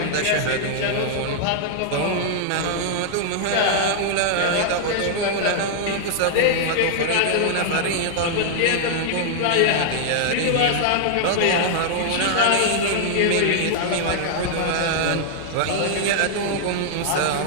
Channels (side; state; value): both; different; correlation -0.01